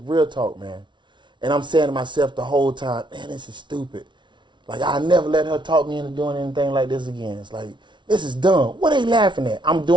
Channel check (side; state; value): left; late; 0.23 ms